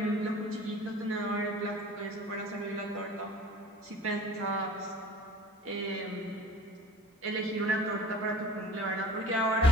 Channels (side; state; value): both; normal; correlation 0.43